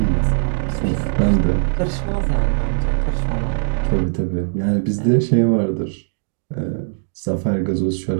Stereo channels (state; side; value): silent; left; digital silence